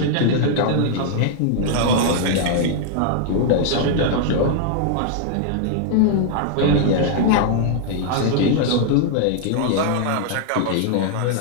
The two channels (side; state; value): both; different; correlation -0.01